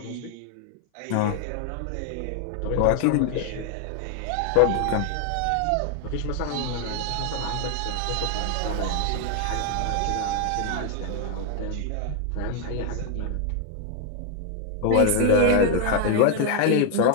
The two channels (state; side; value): different; both; correlation 0.00